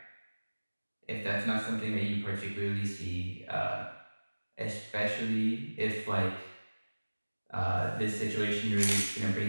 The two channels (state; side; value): inverted; both; correlation -1.00